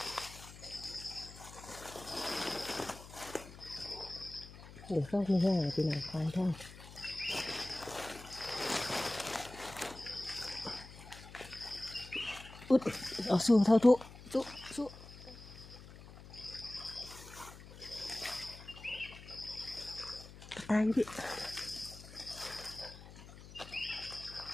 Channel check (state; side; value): noise; left; hum, 16 dB below the sound